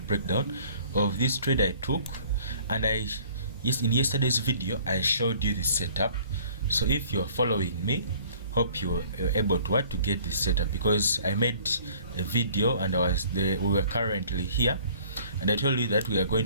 breakdown of this trade I took. And in yesterday's video I showed you the setup. So if you're following me, hope you're able to get this setup, because I made a video and we were currently here, and I told you that we're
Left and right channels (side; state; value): both; inverted; correlation -0.54